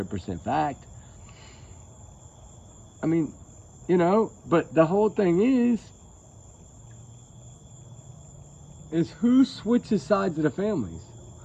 fact. I mean, you know, but the whole thing is who switches sides of the families?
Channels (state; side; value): identical; both; correlation 1.00